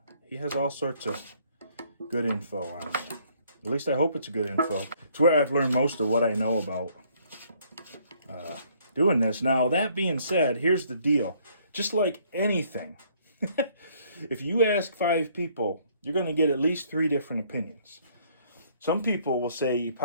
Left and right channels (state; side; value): inverted; both; correlation -0.64